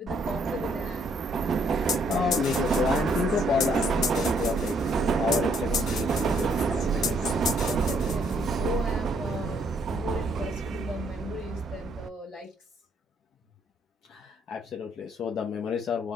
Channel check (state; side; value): normal; both; correlation 0.69